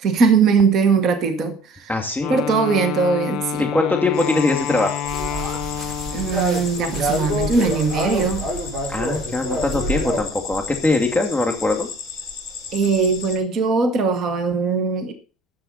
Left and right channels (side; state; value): both; normal; correlation 0.52